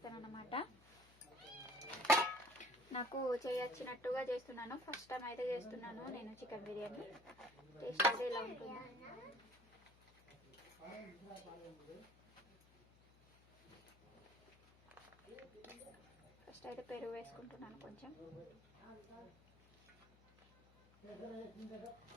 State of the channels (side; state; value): left; noise; hum, 26 dB below the sound